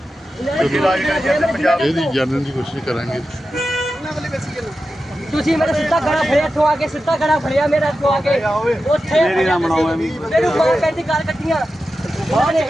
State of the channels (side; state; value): both; normal; correlation 0.92